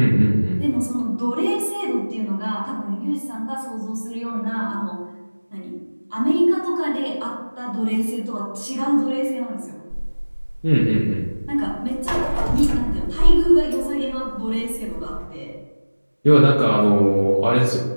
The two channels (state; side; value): inverted; both; correlation -1.00